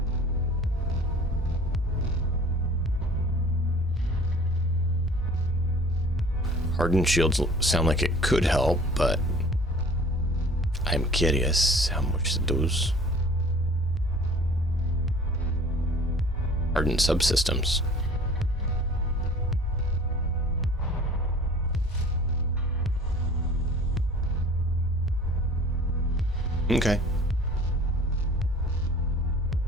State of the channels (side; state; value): both; normal; correlation 0.47